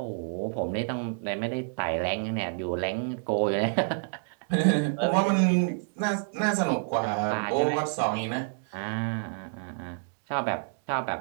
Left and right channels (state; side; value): silent; left; digital silence